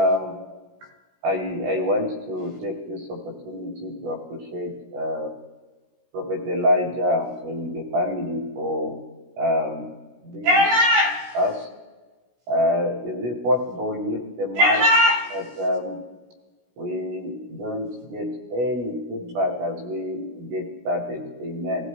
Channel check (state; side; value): late; left; 16 ms